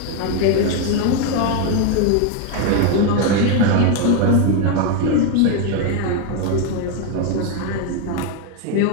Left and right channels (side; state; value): both; different; correlation 0.01